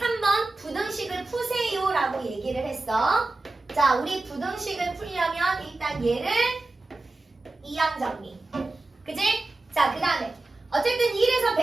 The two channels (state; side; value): quieter; left; 3.1 dB